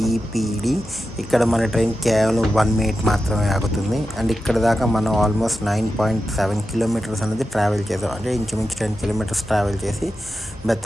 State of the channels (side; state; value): both; normal; correlation 0.91